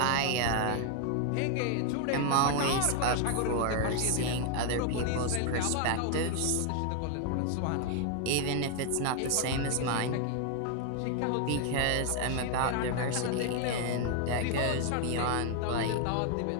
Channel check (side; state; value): both; different; correlation 0.00